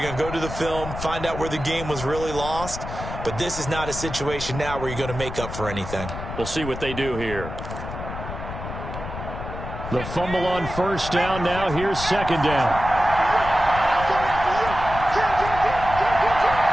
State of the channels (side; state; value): left; noise; rumble, 8 dB below the sound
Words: going to go to the film, find out where the game was really lost. But this is not a situation now where you're going to make up for anything. We'll see what they do here. The fumble on first down now. Here's second down.